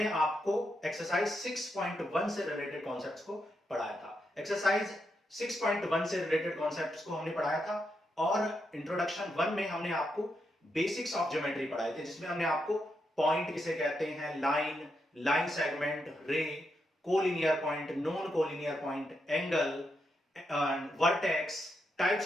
आपको एक्सरसाइज 6.1 से रिलेटेड कॉन्सेप्ट्स को पढ़ाया था। एक्सरसाइज 6.1 से रिलेटेड कॉन्सेप्ट्स को हमने पढ़ाया था और इंट्रोडक्शन 1 में हमने आपको बेसिक्स ऑफ ज्योमेट्री पढ़ाए थे, जिसमें हमने आपको पॉइंट किसे कहते हैं, line, line segment, ray, collinear point, non collinear point, angle, vertex, types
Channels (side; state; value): both; normal; correlation 0.83